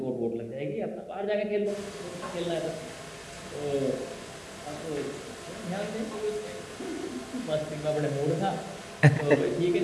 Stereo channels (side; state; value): both; identical; correlation 1.00